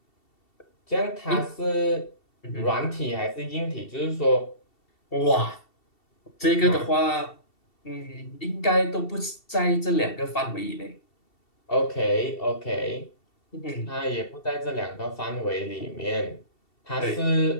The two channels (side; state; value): right; late; 2.7 ms